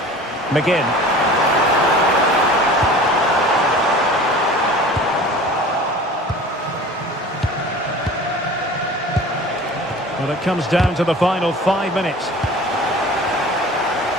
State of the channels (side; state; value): both; normal; correlation 0.41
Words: McGinn. Well, it comes down to the final 5 minutes.